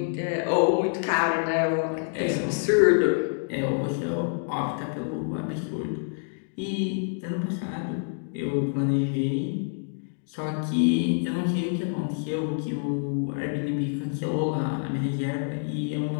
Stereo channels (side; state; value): right; silent; digital silence